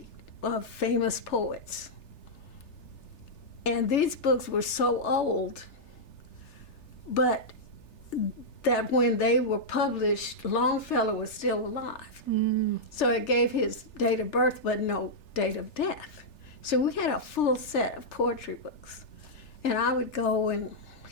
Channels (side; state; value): right; late; 3.3 ms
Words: of famous poets. And these books were so old, but that when they were published, Longfellow was still alive. So it gave his date of birth, but no date of death. So we had a full set of poetry books. And I would go and,